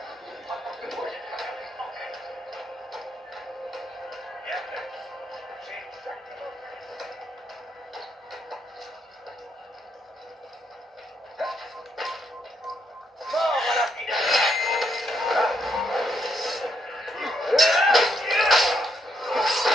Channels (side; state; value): both; normal; correlation 0.77